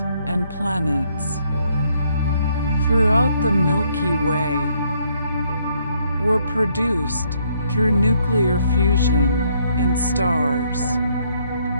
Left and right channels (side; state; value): both; inverted; correlation -0.70